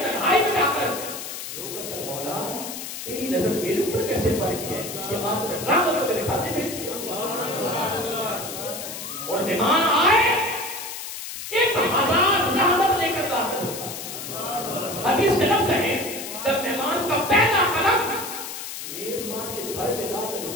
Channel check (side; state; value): left; noise; hiss, 8 dB below the sound